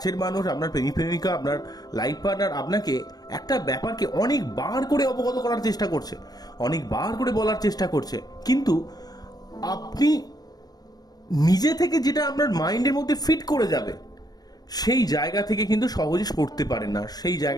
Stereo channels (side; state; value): right; late; 0.19 ms